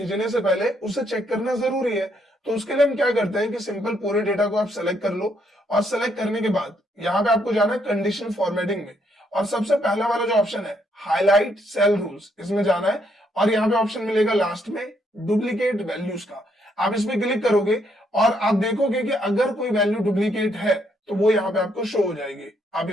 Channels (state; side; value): normal; both; correlation 0.73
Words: से पहले उसे चेक करना जरूरी है। तो उसके लिए हम क्या करते हैं कि सिंपल पूरे डेटा को आप सेलेक्ट कर लो, और सेलेक्ट करने के बाद यहाँ पे आपको जाना है कंडीशन फॉर्मेटिंग में, और सबसे पहला वाला जो ऑप्शन है हाईलाइट सेल रूल्स, इसमें जाना है, और यहाँ पे ऑप्शन मिलेगा लास्ट में डुप्लीकेट वैल्यूज का। आप इस पे क्लिक करोगे और आप देखोगे कि अगर कोई वैल्यू डुप्लीकेट है तो वो यहाँ पे आपको शो हो जाएगी। आप